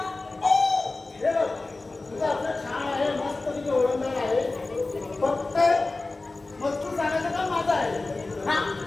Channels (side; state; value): right; quieter; 3.3 dB